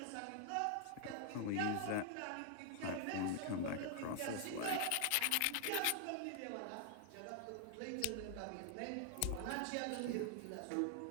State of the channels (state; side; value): different; both; correlation 0.00